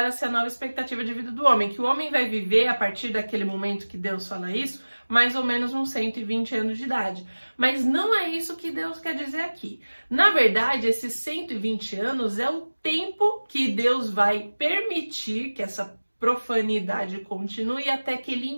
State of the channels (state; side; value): inverted; both; correlation -1.00